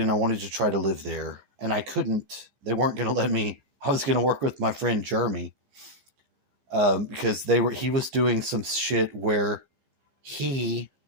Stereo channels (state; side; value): late; left; 15 ms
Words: I wanted to try to live there, and I couldn't. They weren't going to let me. I was going to work with my friend Jeremy, because he was doing some shit where he